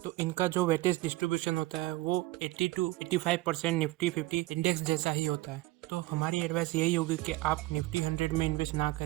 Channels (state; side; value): quieter; left; 19.1 dB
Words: तो इनका जो वेटेज डिस्ट्रीब्यूशन होता है वो 80 to 85% निफ्टी 50 इंडेक्स जैसा ही होता है। तो हमारी एडवाइस यही होगी कि आप निफ्टी 100 में इन्वेस्ट ना